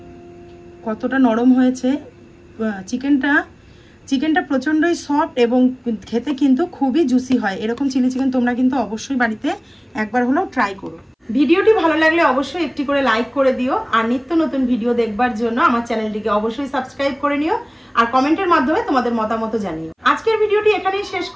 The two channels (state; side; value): identical; both; correlation 1.00